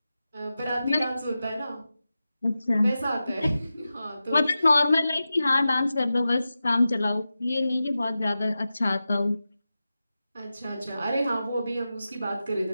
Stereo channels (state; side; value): inverted; both; correlation -0.93